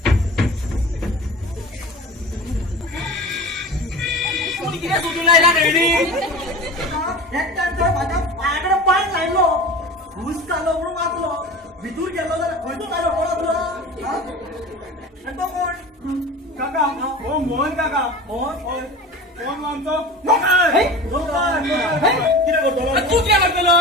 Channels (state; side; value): normal; both; correlation 0.34